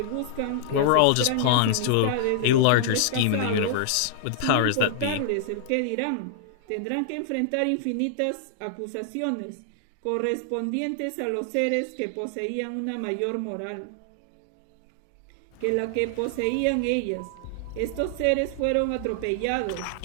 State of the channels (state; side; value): different; both; correlation -0.01